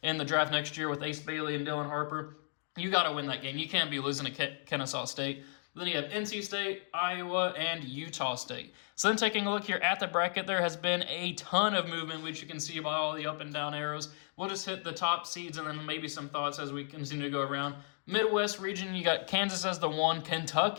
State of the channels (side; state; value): right; silent; 55 dB below the other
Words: in the draft next year with Ace Bailey and Dylan Harper, you got to win that game. You can't be losing to Kennesaw State. Then you have NC State, Iowa, and Utah State. So then taking a look here at the bracket, there has been a ton of movement, which you can see by all the up and down arrows. We'll just hit the top seeds and then maybe some thoughts as we continue to go around. Midwest region, you got Kansas as the 1,